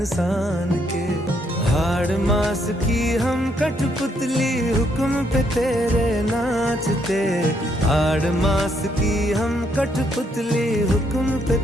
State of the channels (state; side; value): normal; both; correlation 0.73